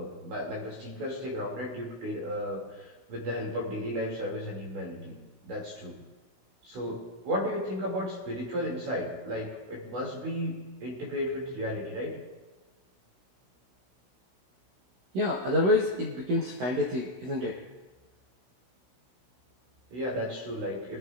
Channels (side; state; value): left; late; 16 ms